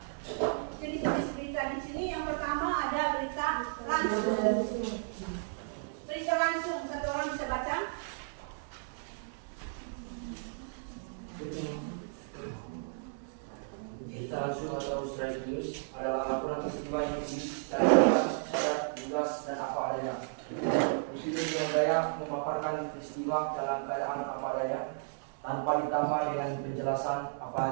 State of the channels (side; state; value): left; silent; digital silence